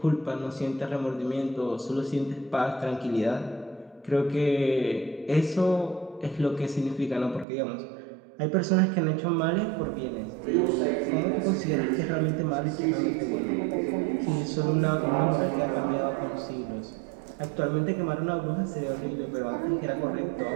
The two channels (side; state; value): left; drops out; at 7.5 s